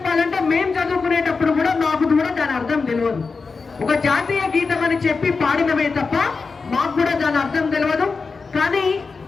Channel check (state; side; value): quieter; right; 4.6 dB